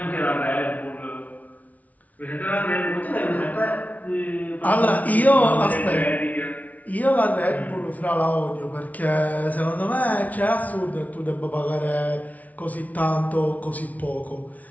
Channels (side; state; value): right; late; 0.072 ms